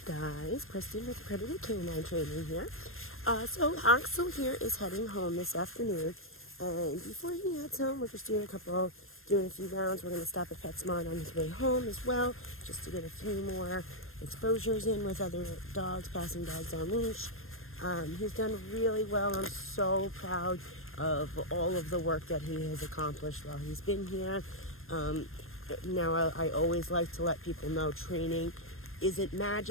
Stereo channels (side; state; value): right; late; 0.60 ms